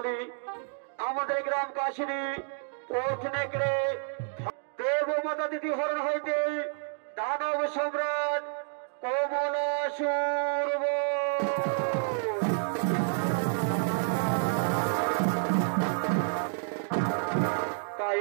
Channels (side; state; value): left; silent; digital silence